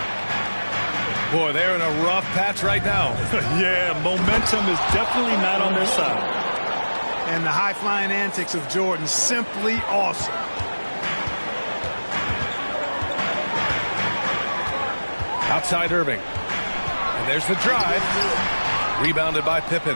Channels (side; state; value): both; inverted; correlation -1.00